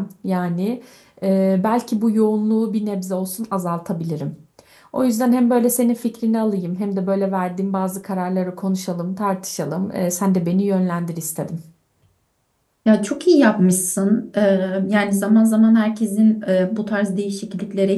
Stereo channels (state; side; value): identical; both; correlation 1.00